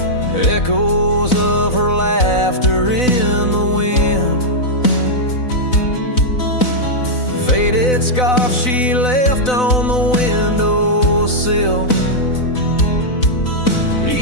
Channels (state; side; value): late; right; 4.0 ms